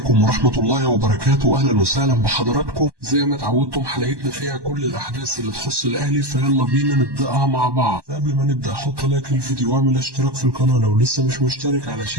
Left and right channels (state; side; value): late; left; 1.1 ms